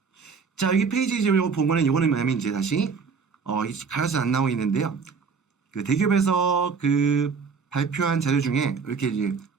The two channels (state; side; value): quieter; left; 5.4 dB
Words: 자, 여기 페이지 보면은 이거는 뭐냐면 이제 다시 가려서 안 나오고 있는데요. 그 대기업에서 그 발표한 자료 중에 이렇게 이제